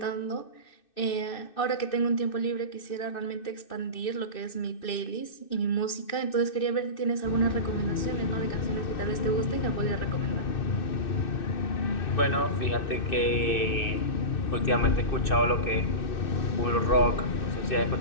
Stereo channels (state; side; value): late; right; 2.6 ms